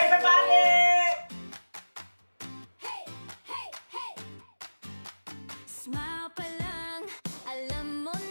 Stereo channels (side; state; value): both; inverted; correlation -1.00